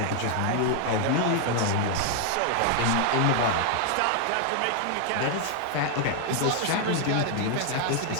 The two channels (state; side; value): different; both; correlation 0.00